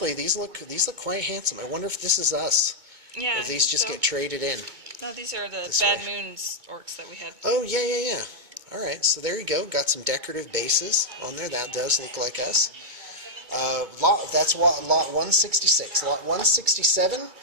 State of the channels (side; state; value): left; late; 2.2 ms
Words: these look quite handsome. I wonder if this is us. yeah, Or these just get traded in. No, these are the This Bad way. Moons orcs that we had. Oh, yeah. All right, so there you go. Got some decorative bases on there. That does look like us. That's lot 166. Lot 167,